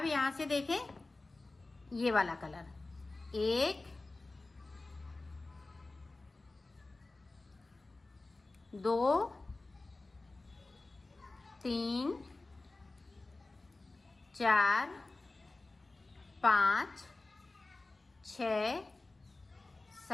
यहां से देखें ये वाला कलर 1 2 3 4 5 6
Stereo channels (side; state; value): right; quieter; 3.2 dB